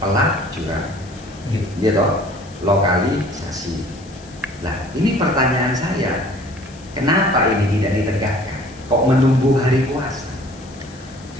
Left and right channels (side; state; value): left; noise; hiss, 23 dB below the sound